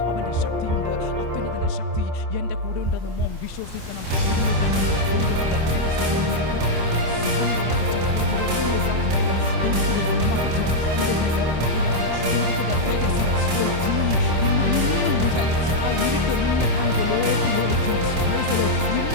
അവൻ്റെ ശക്തിയുണ്ട്, അത്യുന്നതൻ്റെ ശക്തി എൻ്റെ കൂടെ ഉണ്ടെന്ന് മോൻ വിശ്വസിക്കണം.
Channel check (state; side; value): late; left; 26 ms